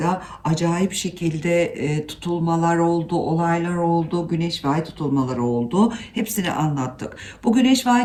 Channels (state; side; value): identical; both; correlation 1.00